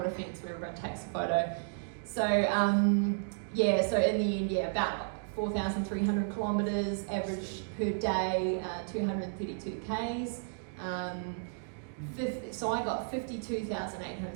fence where everyone takes a photo. So yeah, so in the end, yeah, about 4,300 kilometres, average per day, 232 Ks. So I got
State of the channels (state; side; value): silent; left; digital silence